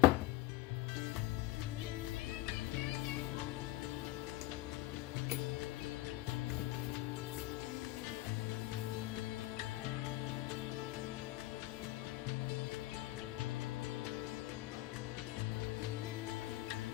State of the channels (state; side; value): quieter; right; 16.8 dB